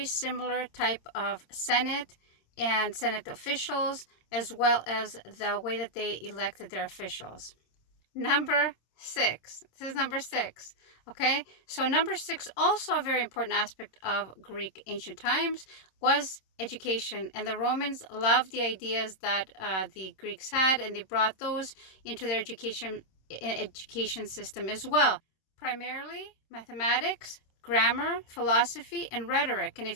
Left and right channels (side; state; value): right; late; 26 ms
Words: similar type of Senate and Senate officials, as well as the way that they elected their officials. Number six. This is number six. Okay, so number six, also a very important aspect of Greek ancient times, was education. And the Romans loved the ideas that the Greeks had, and they brought those into their education system as well. Primarily mathematics, grammar, philosophy, and rhetoric. And